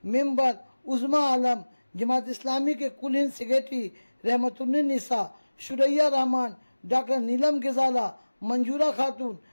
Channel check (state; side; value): inverted; both; correlation -1.00